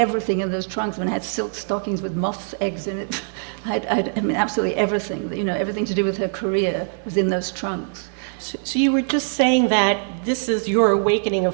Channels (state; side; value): silent; left; 64 dB below the other